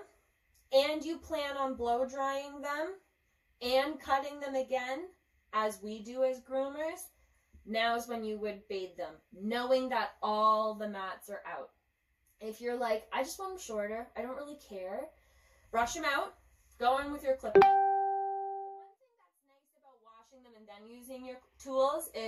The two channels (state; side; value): identical; both; correlation 1.00